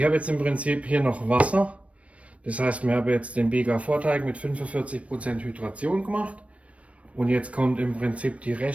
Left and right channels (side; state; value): left; late; 0.064 ms